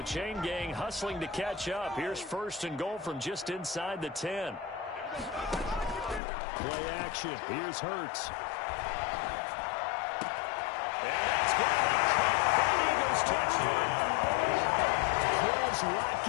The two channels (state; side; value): drops out; right; at 6.2 s